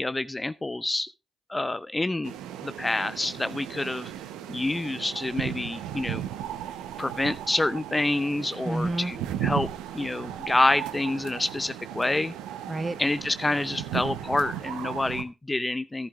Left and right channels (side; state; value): both; normal; correlation 0.90